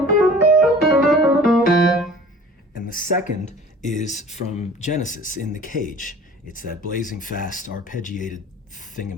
And the second is from Genesis, In the Cage. It's that blazing fast arpeggiated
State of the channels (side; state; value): both; normal; correlation 0.45